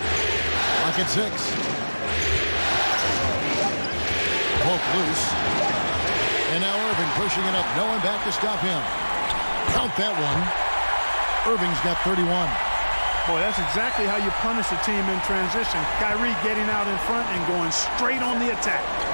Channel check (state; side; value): inverted; both; correlation -1.00